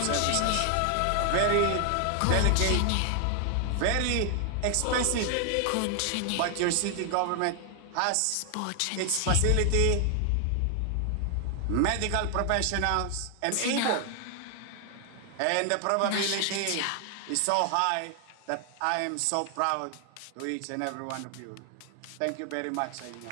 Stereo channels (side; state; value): both; different; correlation 0.00